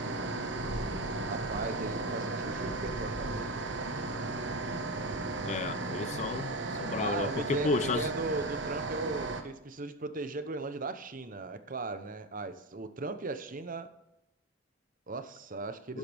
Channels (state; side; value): normal; both; correlation 0.17